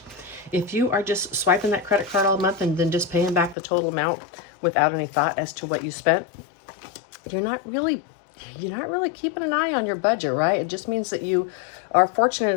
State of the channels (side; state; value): right; drops out; at 3.6 s